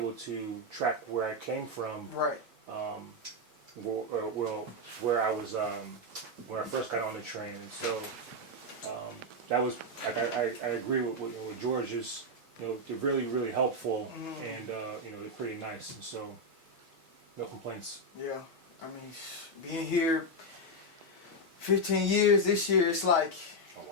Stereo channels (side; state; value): both; normal; correlation 0.02